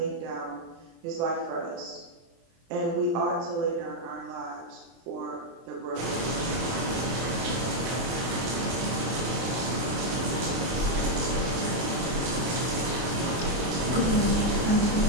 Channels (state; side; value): late; left; 24 ms